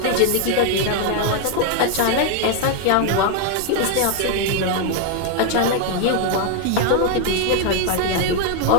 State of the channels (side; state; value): both; different; correlation 0.00